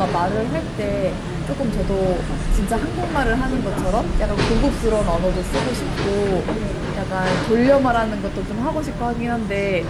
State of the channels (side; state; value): both; identical; correlation 1.00